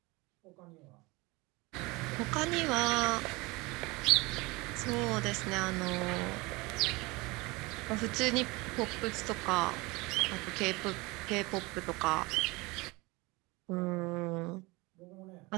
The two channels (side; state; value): left; quieter; 24.1 dB